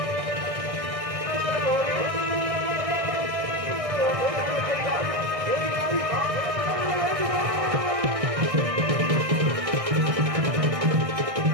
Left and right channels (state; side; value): late; left; 1.6 ms